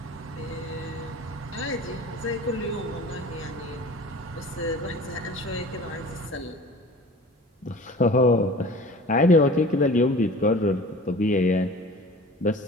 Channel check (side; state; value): both; normal; correlation 0.42